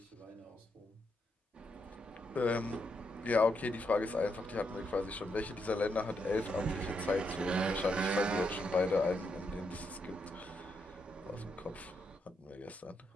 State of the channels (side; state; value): both; normal; correlation 0.80